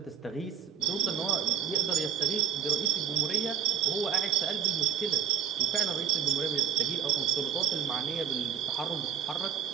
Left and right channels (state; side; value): quieter; left; 8.2 dB